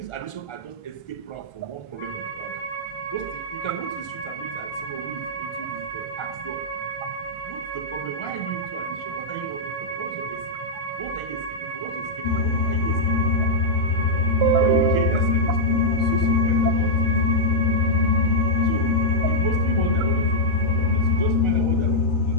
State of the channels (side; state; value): right; late; 1.4 ms